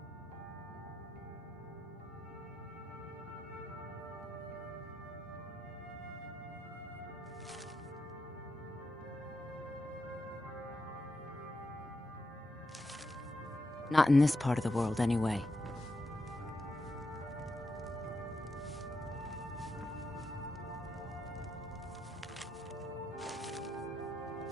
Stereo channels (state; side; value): normal; both; correlation 0.85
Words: Not in this part of the world, anyway.